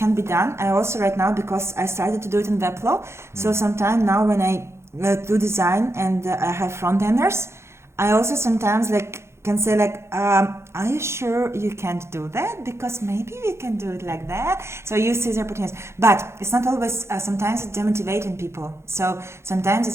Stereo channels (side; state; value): left; late; 0.13 ms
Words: be done. I also right now, because I started to do it in Webflow, so sometimes now when I do design and I have front enders, I also sometimes like can say like, are you sure you can't do that? Because maybe we can do it like that. So you see the opportunities, but it's not always. Sometimes it's demotivating people. So sometimes